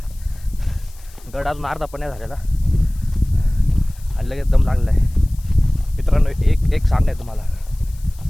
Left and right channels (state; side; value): noise; left; hiss, 25 dB below the sound